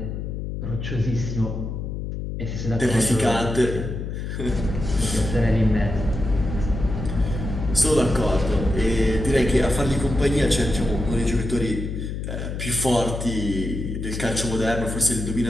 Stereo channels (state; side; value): noise; left; hum, 5 dB below the sound